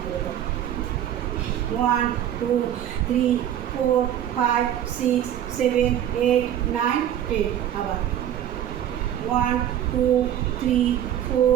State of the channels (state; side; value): quieter; left; 10.9 dB